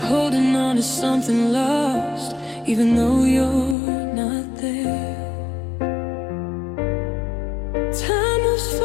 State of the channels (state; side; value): drops out; right; at 3.8 s